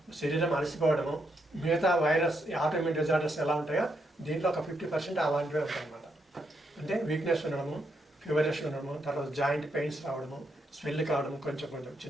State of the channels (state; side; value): normal; both; correlation 0.79